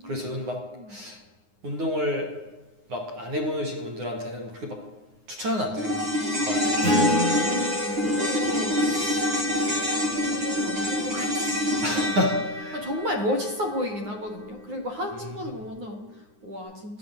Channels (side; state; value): left; late; 9.6 ms